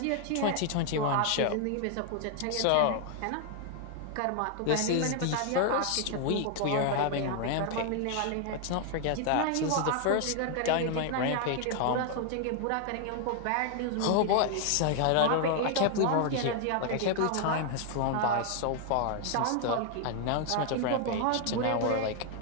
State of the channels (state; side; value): different; both; correlation 0.00